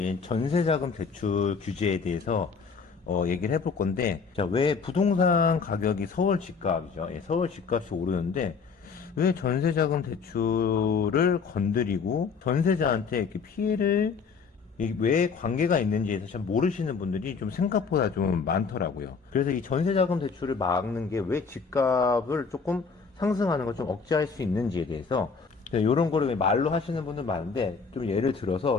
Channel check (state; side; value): quieter; right; 5.3 dB